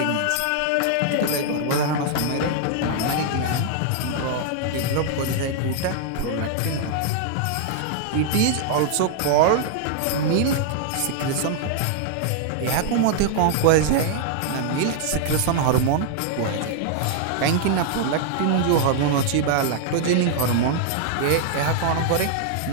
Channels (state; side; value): different; both; correlation -0.01